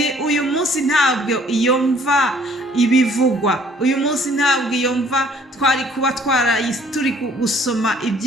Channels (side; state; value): both; normal; correlation 0.58